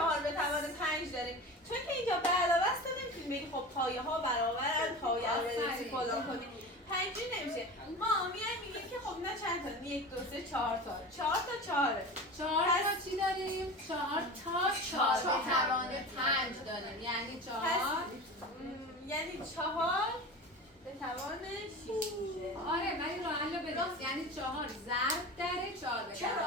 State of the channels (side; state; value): both; normal; correlation 0.31